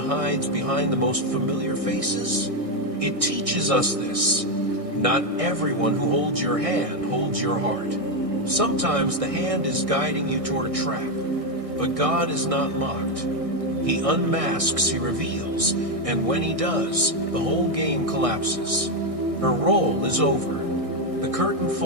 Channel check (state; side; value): late; left; 1.6 ms